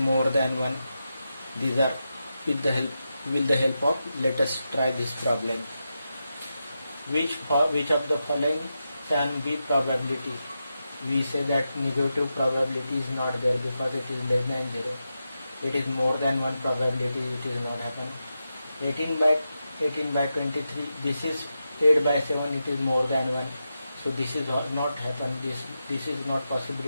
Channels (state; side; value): inverted; both; correlation -0.88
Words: than 1. These are with the help with the help of, let us try this problem. Which of the following can be probability? We say that negative probability is not there because it is less than 0. It is more than one probability, it is not happen. 18 by 23, this is 8 by 7, it is more than 1. So this is not happen. This is not